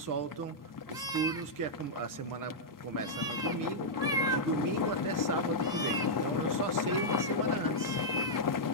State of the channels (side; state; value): both; normal; correlation -0.07